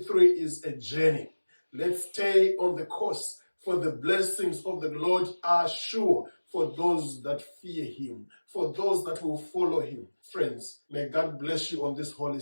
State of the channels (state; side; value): inverted; both; correlation -1.00